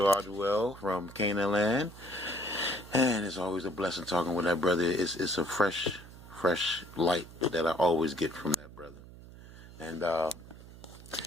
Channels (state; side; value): noise; right; hum, 17 dB below the sound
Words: Al from Canaanland. And it's always a blessing talking with that brother. It's a fresh light that I always get from that brother. And,